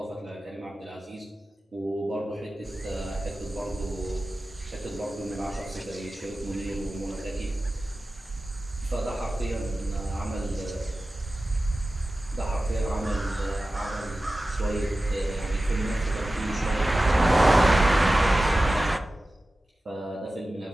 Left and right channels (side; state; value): both; normal; correlation 0.95